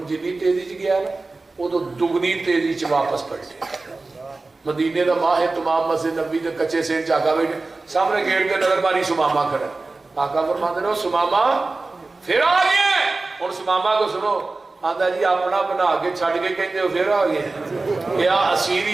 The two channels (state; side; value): quieter; left; 3.5 dB